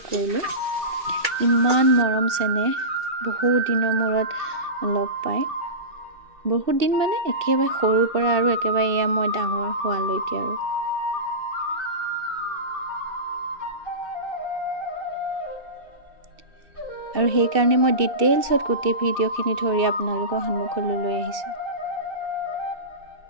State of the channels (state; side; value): late; left; 2.6 ms